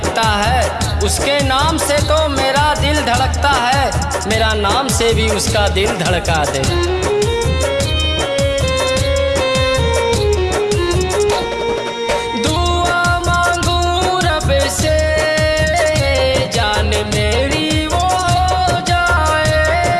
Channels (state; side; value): identical; both; correlation 1.00